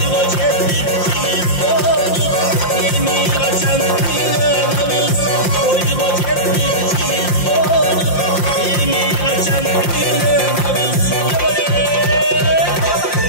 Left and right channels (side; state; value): right; late; 5.7 ms